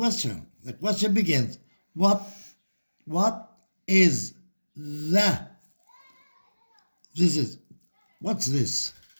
The question begins, what is what's this?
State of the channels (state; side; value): inverted; both; correlation -1.00